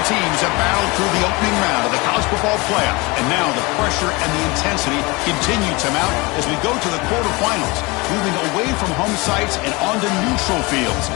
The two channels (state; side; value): quieter; right; 25.2 dB